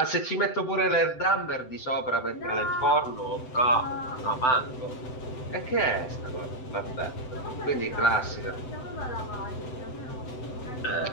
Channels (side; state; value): right; late; 7.9 ms